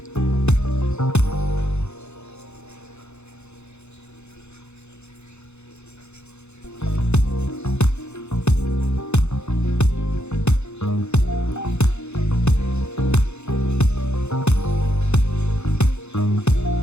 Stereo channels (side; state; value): right; late; 0.81 ms